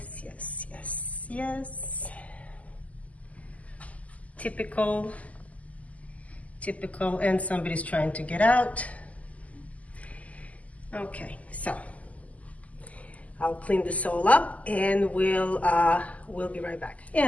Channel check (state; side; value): late; right; 0.072 ms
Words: Yes. Typical, and somebody's trying to get out. Okay, so I'll clean this all up and we'll be right back.